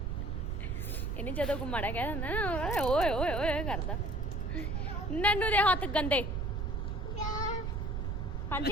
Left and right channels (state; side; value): noise; right; rumble, 1 dB below the sound